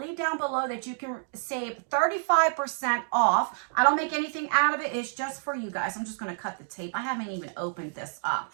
down below that you can save 35% off. I don't make anything out of it. It's just for you guys. I'm just going to cut the tape. I haven't even opened this up.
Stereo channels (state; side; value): silent; left; digital silence